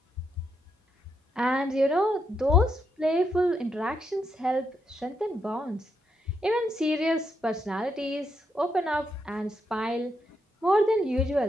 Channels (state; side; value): normal; both; correlation 0.80